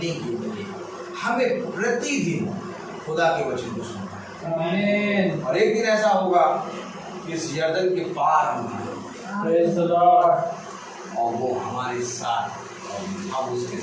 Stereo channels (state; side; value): identical; both; correlation 1.00